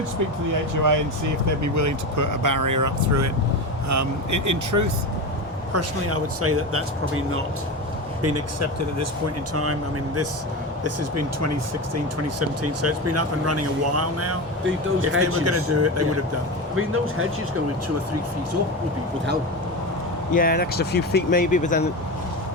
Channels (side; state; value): both; normal; correlation 0.22